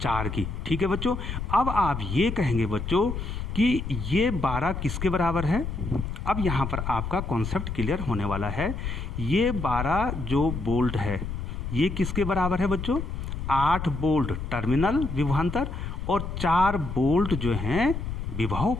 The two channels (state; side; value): noise; left; rumble, 5 dB below the sound